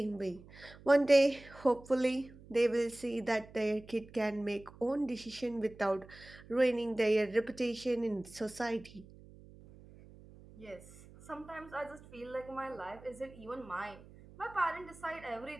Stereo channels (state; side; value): noise; right; hum, 20 dB below the sound